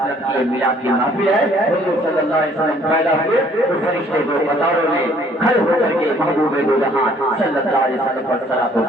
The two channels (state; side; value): normal; both; correlation 0.60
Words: کی میلاد کی محفل ہے حضور صلی اللہ علیہ وسلم پیدا ہوئے تو فرشتے کو قطاروں میں کھڑے ہو کر کے محبوب دو جہاں صلی اللہ علیہ وسلم پر صلاۃ و